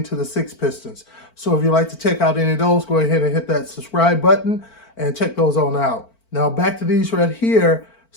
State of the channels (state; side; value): late; right; 4.5 ms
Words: to the 6 pistons. So if you'd like to check out any of those, go ahead and hit that subscribe button and check those on out. Now back to these right here.